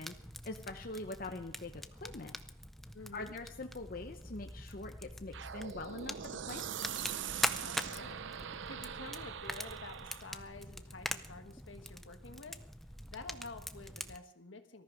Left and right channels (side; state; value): both; normal; correlation 0.45